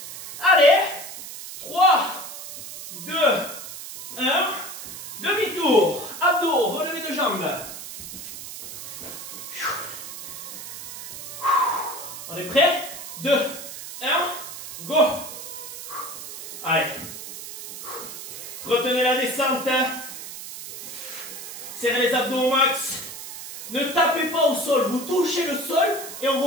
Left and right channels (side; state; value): right; noise; hiss, 10 dB below the sound